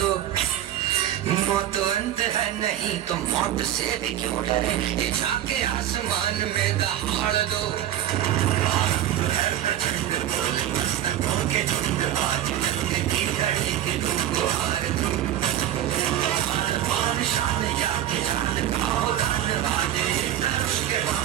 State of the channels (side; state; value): left; quieter; 11.9 dB